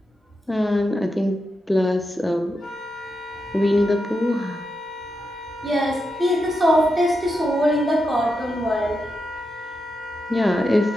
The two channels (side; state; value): both; normal; correlation 0.86